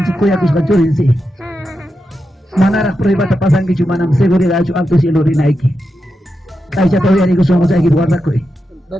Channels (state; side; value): normal; both; correlation 0.88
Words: si kuya ko sa kachurin si. Manarak prueba ta pasang ki chumanam seguridad chu alto cielo rinaiki. Kay siya tawya ni ko sumo sa guarda ko.